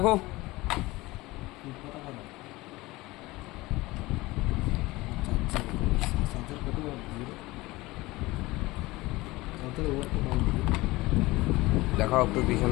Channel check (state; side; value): quieter; right; 20.4 dB